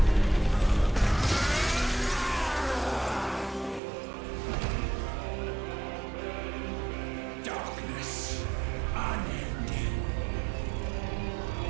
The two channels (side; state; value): left; drops out; at 3.8 s